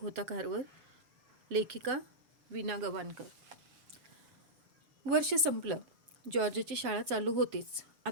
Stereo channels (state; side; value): late; left; 7.3 ms